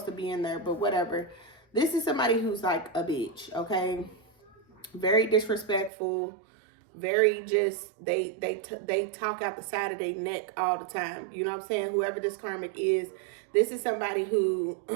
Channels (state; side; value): drops out; left; at 5.9 s